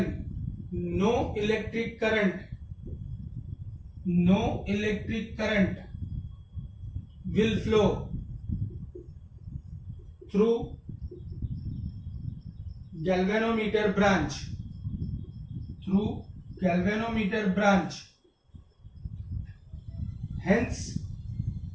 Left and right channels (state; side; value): identical; both; correlation 1.00